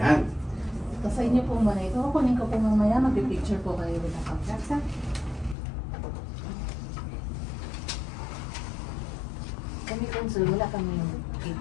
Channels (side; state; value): right; drops out; at 5.6 s